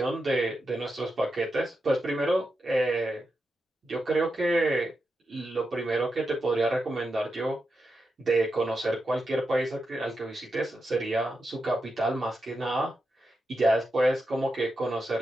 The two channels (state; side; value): normal; both; correlation 0.87